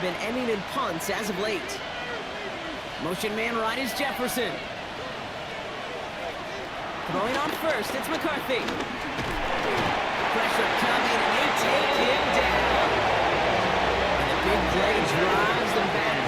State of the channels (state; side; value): identical; both; correlation 1.00